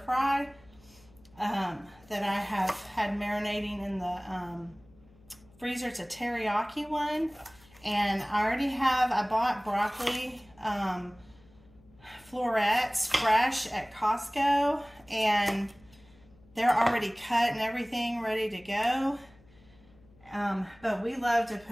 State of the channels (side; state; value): left; noise; hum, 27 dB below the sound